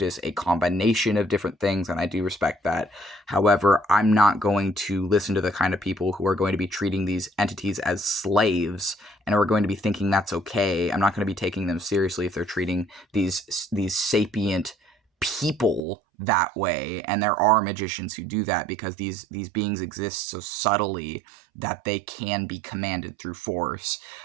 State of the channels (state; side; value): drops out; left; at 15.8 s